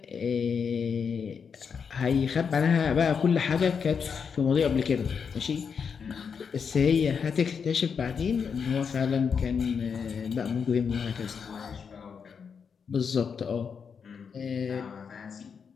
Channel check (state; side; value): quieter; right; 6.3 dB